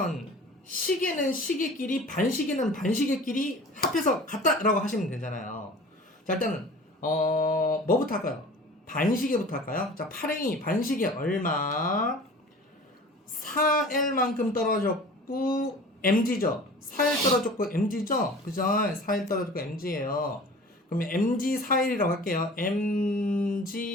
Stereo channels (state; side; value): normal; both; correlation 0.42